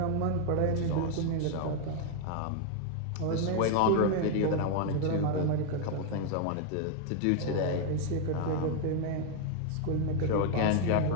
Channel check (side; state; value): both; different; correlation 0.00